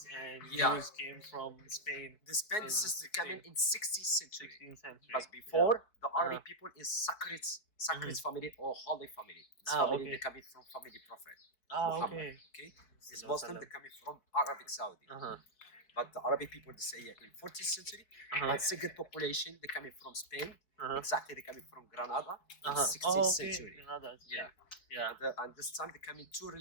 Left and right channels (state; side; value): late; right; 4.6 ms